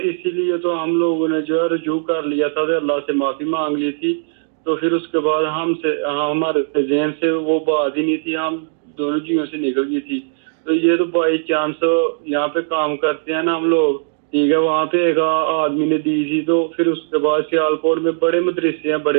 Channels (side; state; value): left; silent; digital silence